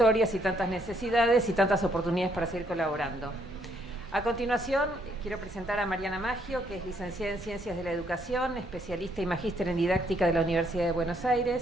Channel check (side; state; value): both; normal; correlation 0.71